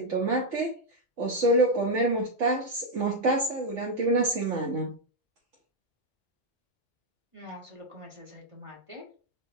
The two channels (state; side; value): normal; both; correlation -0.01